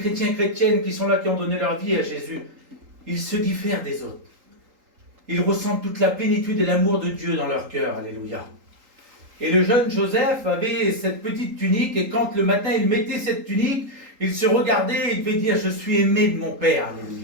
et chrétiennes qui sont là, qui ont donné leur vie à Jésus, ils se diffèrent des autres. Ils ressentent toute la plénitude et l'amour de Dieu dans leur cœur, alléluia. Et le jeune Joseph avait cette petite tunique, et quand le matin il mettait cette tunique, il se regardait et il devait dire « Je suis aimé de mon Père »,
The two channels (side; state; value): left; late; 3.8 ms